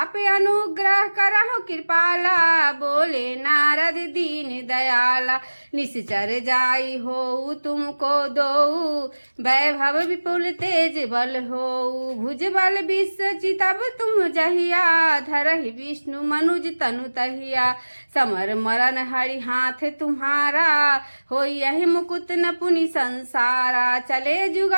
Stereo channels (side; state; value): both; inverted; correlation -1.00